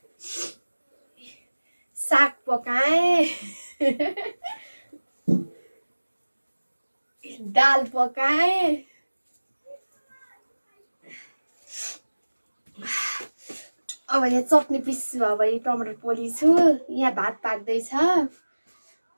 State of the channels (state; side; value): inverted; both; correlation -1.00